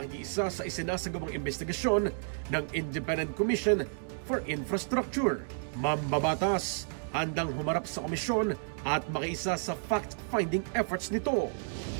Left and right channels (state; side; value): silent; left; 57 dB below the other